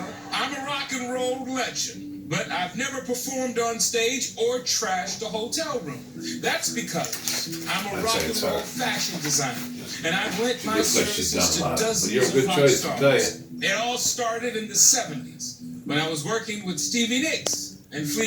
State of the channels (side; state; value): both; identical; correlation 1.00